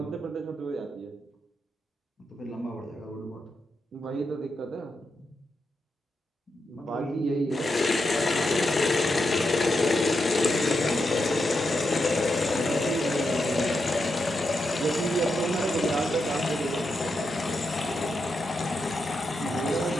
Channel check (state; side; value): normal; both; correlation 0.85